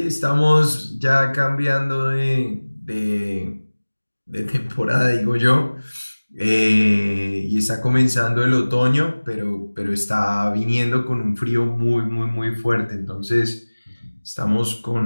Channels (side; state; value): both; inverted; correlation -1.00